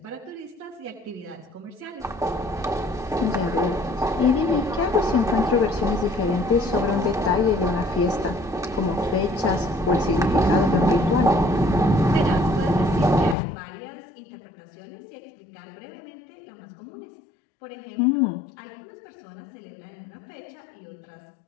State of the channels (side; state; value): right; drops out; at 13.4 s